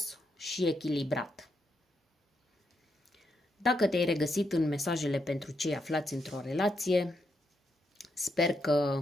și echilibrat. Dacă te-ai regăsit în mesajele pentru cei aflați într-o relație, sper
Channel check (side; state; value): both; normal; correlation 0.81